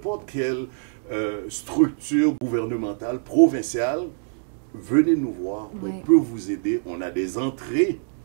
quelle structure gouvernementale, provinciale, venez nous voir, on peut vous aider, on a des entrées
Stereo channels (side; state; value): left; silent; digital silence